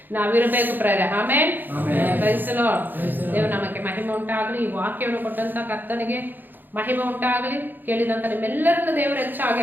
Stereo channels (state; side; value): late; left; 0.089 ms